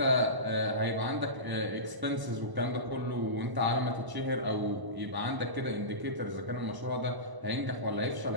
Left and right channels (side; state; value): left; late; 1.0 ms